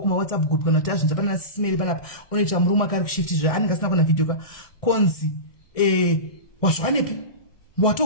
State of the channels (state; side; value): late; right; 1.6 ms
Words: WhatsApp group kana kuti azvinza pana sisimeri panapa unoita murume akari kushifti zva anenge asina kuona video ka konzi wazvanepi